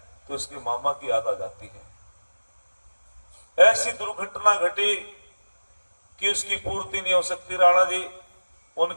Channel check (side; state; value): both; inverted; correlation -1.00